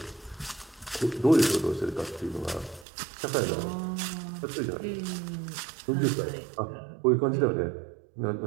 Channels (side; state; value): left; drops out; at 2.9 s